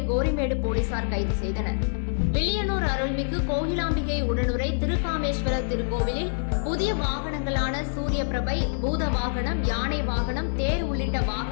கோரிமேடு போலீசார் கைது செய்தனர். வில்லியனூர் அருள்மிகு கோகிலாம்பிகை உடனுரை திருக்காமேஸ்வர திருக்கோவிலில் புதிய வாகனங்களான சூரிய பிரபை, பூத வாகனம், யானை வாகனம், தேர் உள்ளிட்ட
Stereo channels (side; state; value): right; silent; digital silence